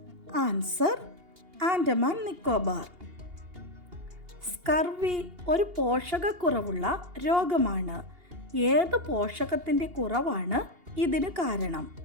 ആൻസർ ആൻഡമാൻ നിക്കോബാർ. സ്കർവി ഒരു പോഷകക്കുറവുള്ള രോഗമാണ്. ഏത് പോഷകത്തിൻ്റെ കുറവാണ് ഇതിന് കാരണം?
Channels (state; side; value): late; left; 2.8 ms